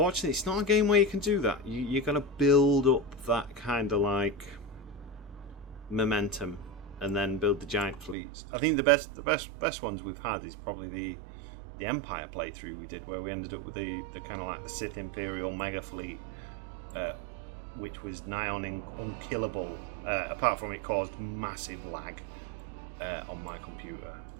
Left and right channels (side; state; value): left; drops out; at 8.2 s